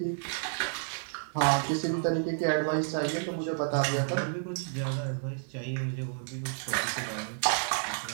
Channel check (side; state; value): left; silent; digital silence